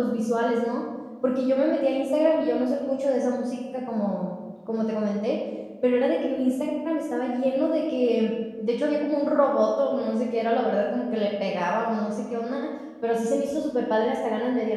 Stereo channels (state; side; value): identical; both; correlation 1.00